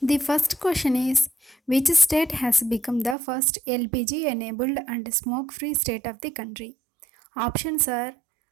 The first question is, which state has become the first LPG enabled and smoke free state of the country? Options are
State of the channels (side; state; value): left; drops out; at 3.2 s